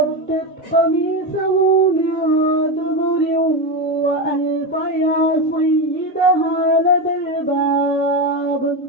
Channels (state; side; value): normal; both; correlation 0.14